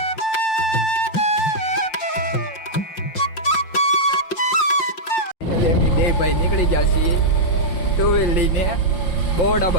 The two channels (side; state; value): right; late; 5.6 ms